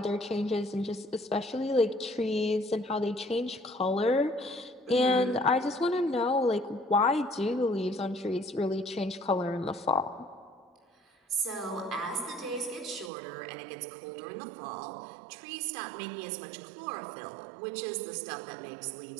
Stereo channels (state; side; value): drops out; left; at 13.1 s